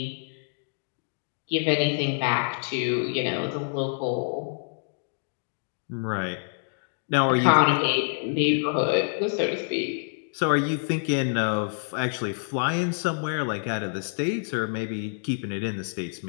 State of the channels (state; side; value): silent; right; digital silence